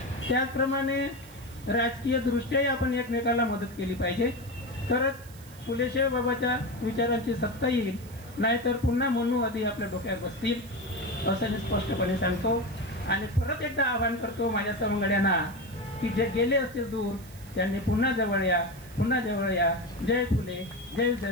त्याचप्रमाणे राजकीय दृष्ट्याही आपण एकमेकाला मदत केली पाहिजे, तरच फुले साहेबाबाच्या विचारांची सत्ता येईल. नाहीतर पुन्हा मनुवादी आपल्या डोक्यात बसतील असं मी स्पष्टपणे सांगतो. आणि परत एकदा आवाहन करतो माझ्या सवंगड्यांना की जे गेले असतील दूर त्यांनी पुन्हा जवळ या, पुन्हा जवळ या. जय फुले, जय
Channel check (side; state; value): right; noise; hiss, 22 dB below the sound